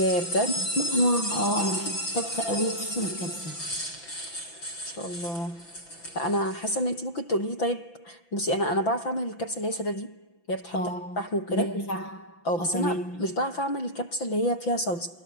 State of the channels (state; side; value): late; right; 5.9 ms